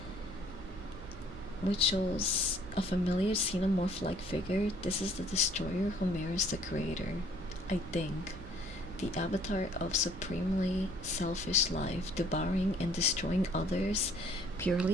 Which shows a familiar xenomorph-like figure. This is the destroyer who mirrors the creator. I think. The avatar of supremely selfish life, devouring and destroying others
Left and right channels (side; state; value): right; noise; rumble, 15 dB below the sound